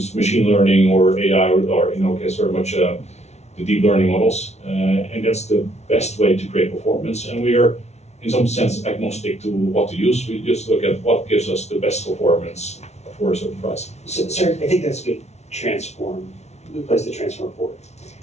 machine learning or AI, or in our case, very much the deep learning models, and that's the best way to create performance. And we are, in some sense, agnostic to what to use. We just look at what gives us the best performance for a certain price. So, sir, I think that's a good place to transform forward.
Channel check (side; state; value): right; late; 0.32 ms